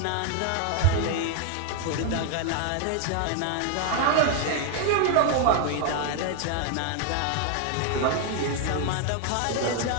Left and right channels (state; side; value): different; both; correlation 0.00